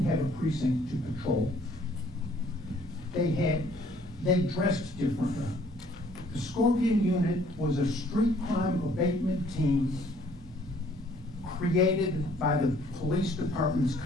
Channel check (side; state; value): both; normal; correlation 0.60